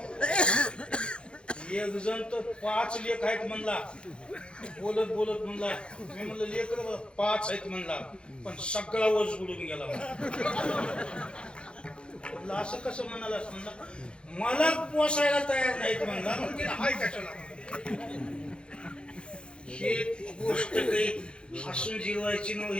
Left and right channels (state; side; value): late; right; 0.055 ms